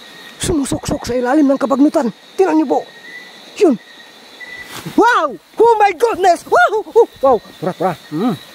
Sumusuksok sa ilalim ng kabagnutan. Tinan niyo po. Yun. Wow! Oh my goodness! Wow! Tura.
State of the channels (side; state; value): both; identical; correlation 1.00